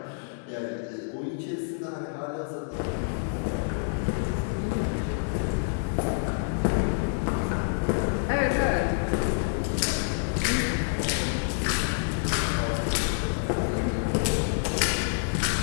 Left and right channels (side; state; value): right; silent; digital silence